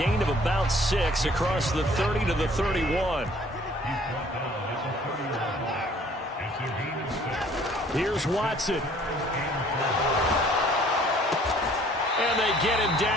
of about 6 across the 30 to the 31. Here's Watson. And they get him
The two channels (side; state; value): both; normal; correlation 0.56